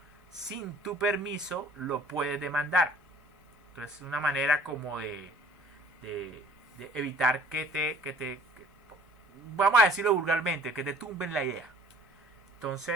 sin tu permiso, lo puedes demandar. Entonces, es una manera como de evitar que vamos a decirlo vulgarmente, que te tumben la idea.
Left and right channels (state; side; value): normal; both; correlation 0.52